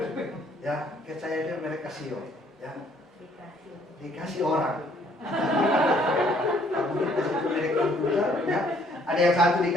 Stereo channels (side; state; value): both; normal; correlation 0.63